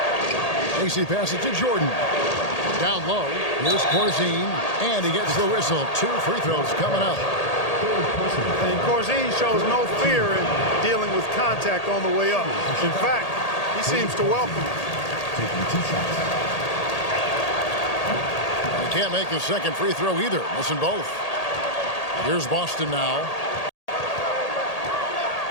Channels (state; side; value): late; right; 1.8 ms